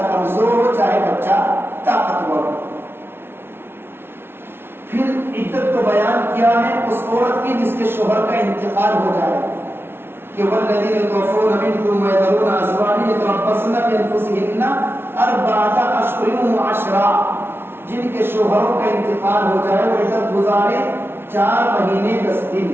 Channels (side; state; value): left; late; 0.11 ms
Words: کمزور ہو چاہے بچہ طاقتور ہو۔ پھر عدت کو بیان کیا ہے اس عورت کی جس کے شوہر کا انتقال ہو جائے کہ والذین یتوفون منکم ویذرون ازواجا یتربصن بانفسہن 4 اشہر وعشرا، جن کے شوہروں کا انتقال ہو جائے وہ عدت گزارے 4 مہینے 10 دن۔